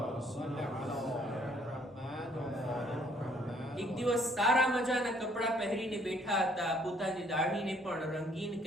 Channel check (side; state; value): both; normal; correlation 0.63